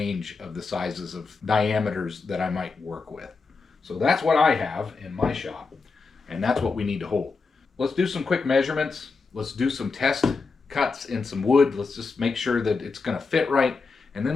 of the sizes of diameters that I might work with. So that's what I have in my shop, and that's what we need to hold. Let's do some quick measurements. Let's do some test cuts in some wood. Let's just make sure that it's going to fit right. And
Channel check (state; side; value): quieter; right; 4.4 dB